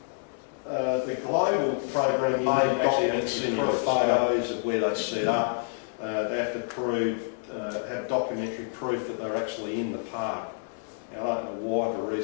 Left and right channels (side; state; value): right; silent; digital silence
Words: the global program, you may actually have to send photos of where they set up. They have to have documentary proof that they're actually in the park. Now, I don't know why the